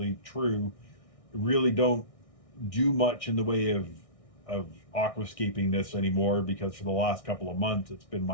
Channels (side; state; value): right; late; 1.6 ms